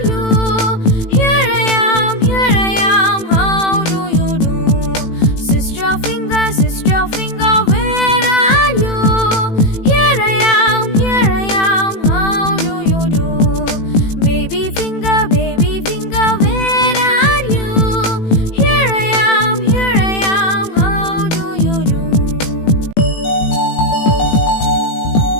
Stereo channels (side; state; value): right; late; 18 ms